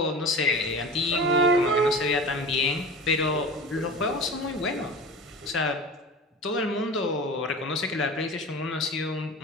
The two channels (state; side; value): normal; both; correlation 0.34